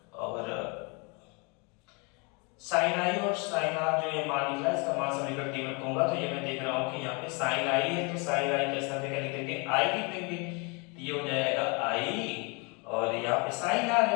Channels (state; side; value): quieter; right; 31.4 dB